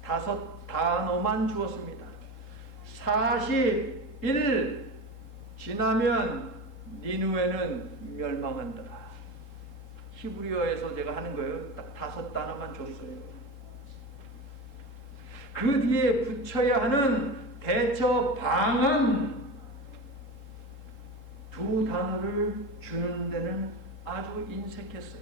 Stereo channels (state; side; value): late; right; 3.7 ms